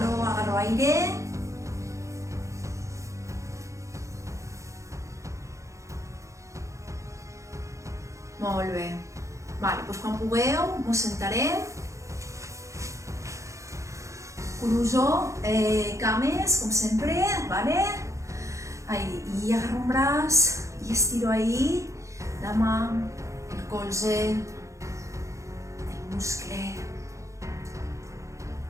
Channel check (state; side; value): late; left; 0.15 ms